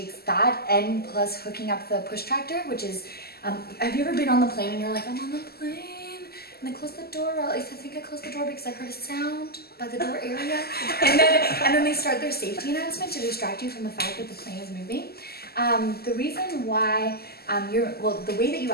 that and plus hooking up the push tractor, which is, have you ever been on the plane and you're like, I'm on the plane, and they close the door? Well, at least I think I closed the door because I heard a sound by the door area. and then they start their safety announcement to distract you from the fact that the plane is moving. The reason why the way that you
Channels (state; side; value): late; right; 0.46 ms